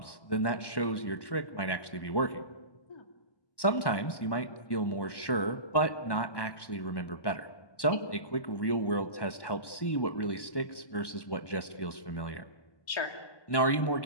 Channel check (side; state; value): right; late; 1.1 ms